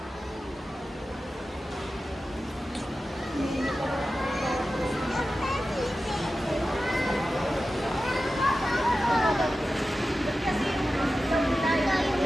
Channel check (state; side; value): normal; both; correlation 0.94